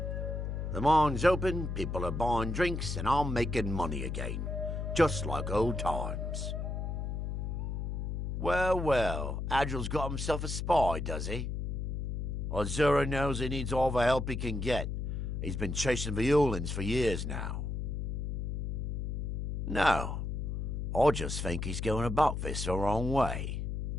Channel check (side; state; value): left; noise; hum, 3 dB below the sound